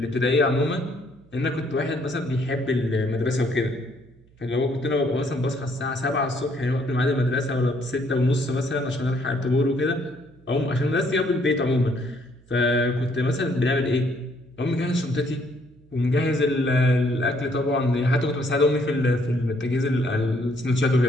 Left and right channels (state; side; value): noise; right; hum, 29 dB below the sound